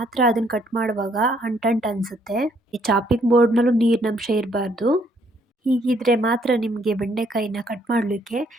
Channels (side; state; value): both; normal; correlation 0.68